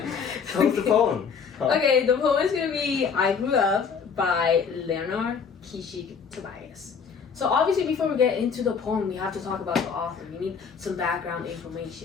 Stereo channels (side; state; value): right; quieter; 6.1 dB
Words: poem. Okay, the poem is going to be I Grew Up by Lenore Kishig Tobias. So obviously before we get into the poem, we have to talk about the author. We need some background